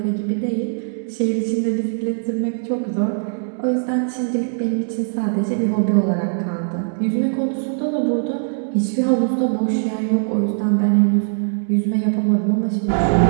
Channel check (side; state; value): left; silent; digital silence